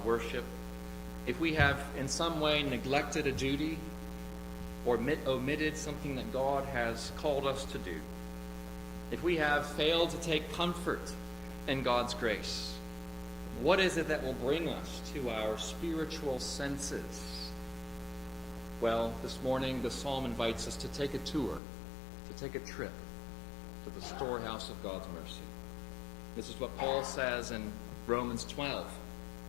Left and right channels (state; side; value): drops out; right; at 21.6 s